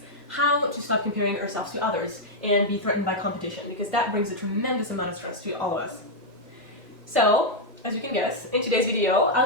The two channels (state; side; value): normal; both; correlation -0.03